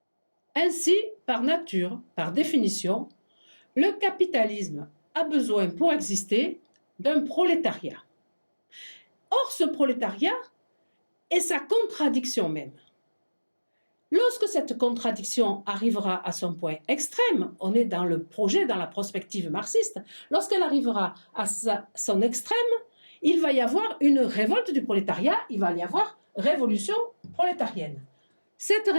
Ainsi, par nature, par définition, le capitalisme a besoin pour exister d'un prolétariat. Or, ce prolétariat est sa contradiction même. Lorsque cette contradiction arrivera à son point extrême, on est dans le projet, dans la prospective marxiste, lorsqu'elle arrivera à son extrême, il va y avoir une révolte du prolétariat, il va y avoir révolution prolétarienne. Cette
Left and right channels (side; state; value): both; inverted; correlation -1.00